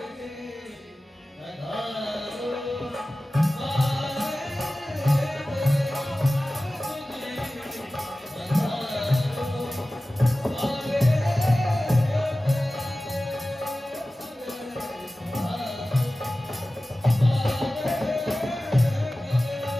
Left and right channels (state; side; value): normal; both; correlation 0.96